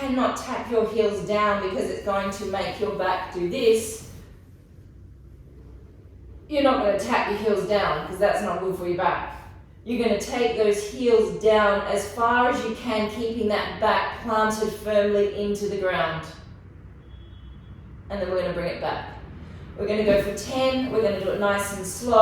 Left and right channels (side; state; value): both; identical; correlation 1.00